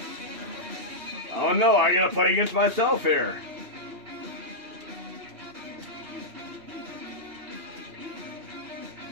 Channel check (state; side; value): late; left; 2.7 ms